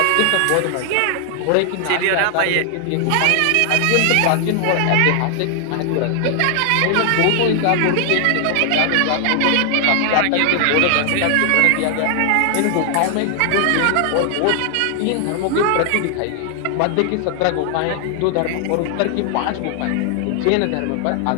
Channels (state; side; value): different; both; correlation 0.00